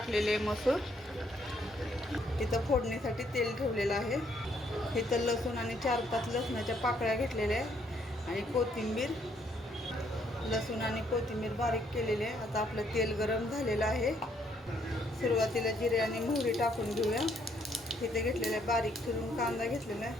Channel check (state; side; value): normal; both; correlation 0.69